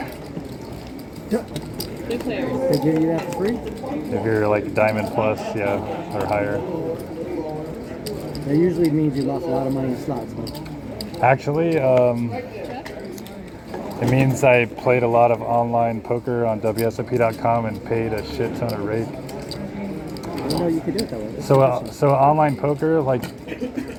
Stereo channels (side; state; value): both; identical; correlation 1.00